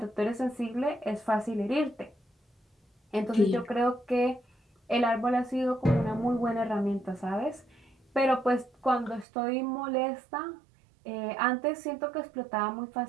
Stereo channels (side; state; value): left; drops out; at 9.2 s